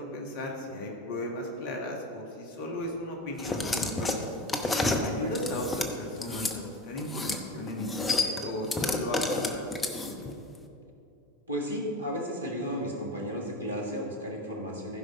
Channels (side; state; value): both; normal; correlation 0.28